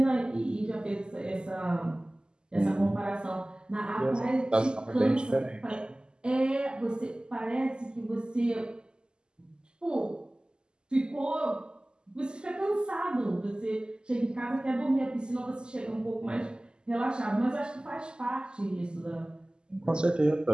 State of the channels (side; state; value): left; late; 0.047 ms